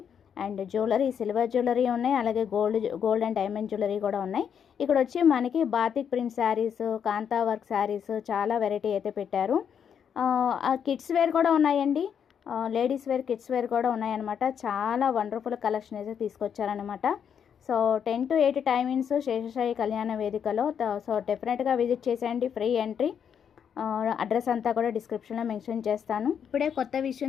అండ్ జ్యువెలరీ, సిల్వర్ జ్యువెలరీ ఉన్నాయి, అలాగే గోల్డ్ అండ్ డైమండ్ జ్యువెలరీ కూడా ఉన్నాయి. ఇక్కడ వచ్చి మనకి బాతిక్ ప్రింట్ శారీస్, కాంతా వర్క్ శారీస్ చాలా వెరైటీ అయితే పెట్టారు. కిడ్స్ వేర్ కూడా ఉన్నాయండి. లేడీస్ వేర్, కిడ్స్ వేర్ కూడా ఉన్నాయన్నమాట. చాలా వండర్ఫుల్ కలెక్షన్ అయితే తీసుకొచ్చారనమాట. సో 10 to 8 టైమింగ్స్ శేషసాయి కళ్యాణ వేదికలో. సో డెఫినెట్గా విజిట్ చేసేయండి. Free entry. అడ్రస్ అంతా కూడా డిస్క్రిప్షన్లో మెన్షన్ చేస్తాను. ఇప్పుడే కొత్త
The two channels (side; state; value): right; quieter; 7.9 dB